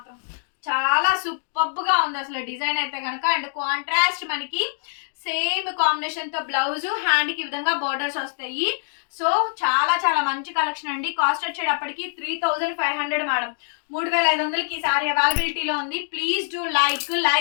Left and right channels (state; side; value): silent; right; digital silence